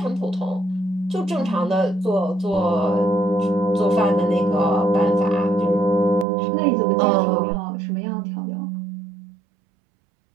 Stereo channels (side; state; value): left; drops out; at 6.2 s